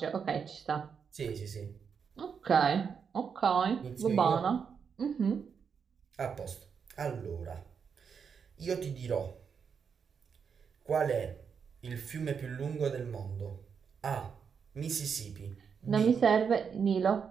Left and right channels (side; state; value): left; quieter; 6.5 dB